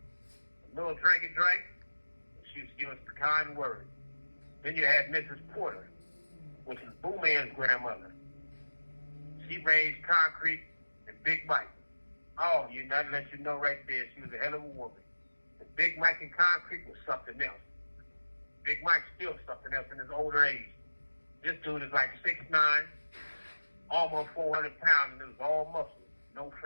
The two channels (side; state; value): both; inverted; correlation -1.00